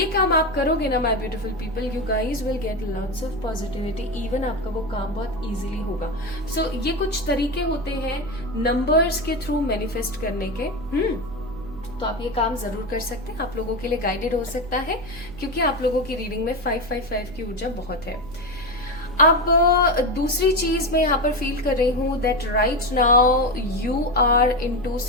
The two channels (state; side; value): noise; right; hum, 16 dB below the sound